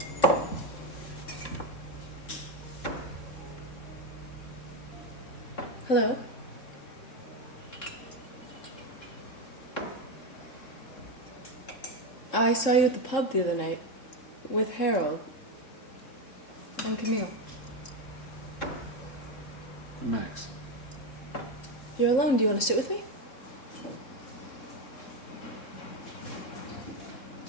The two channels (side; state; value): right; late; 3.7 ms